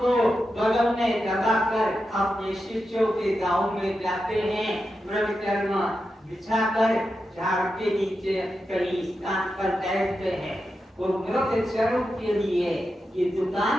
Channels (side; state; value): both; normal; correlation 0.89